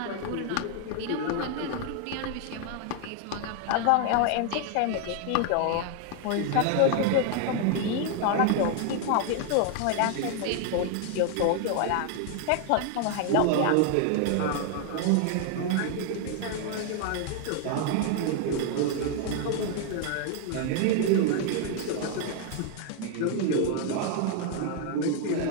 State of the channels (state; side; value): different; both; correlation 0.00